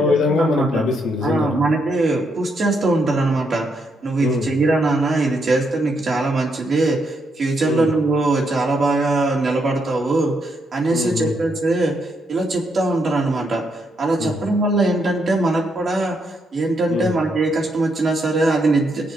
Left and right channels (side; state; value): both; normal; correlation 0.78